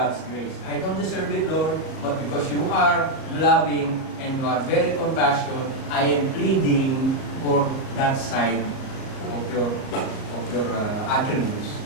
grace. I don't deserve it, Lord, but because you are loving and you are very compassionate, I am pleading for that side of your attributes.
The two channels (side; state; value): right; late; 38 ms